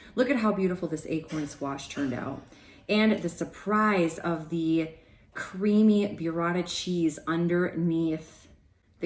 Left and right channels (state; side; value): identical; both; correlation 1.00